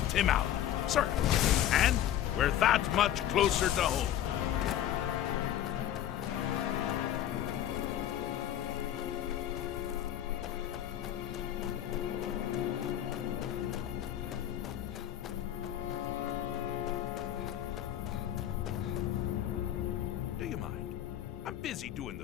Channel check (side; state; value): right; quieter; 11.4 dB